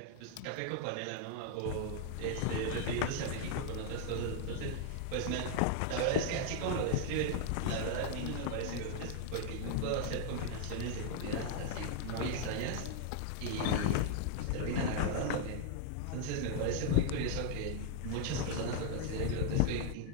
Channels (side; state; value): both; different; correlation -0.01